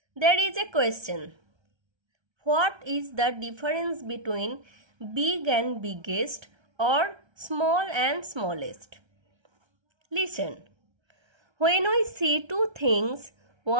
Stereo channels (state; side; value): late; left; 1.3 ms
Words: there is a question. What is the difference between big and biggest or small and smallest? Listen. When we see two things,